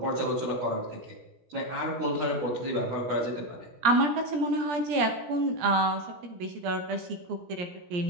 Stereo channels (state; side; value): late; left; 17 ms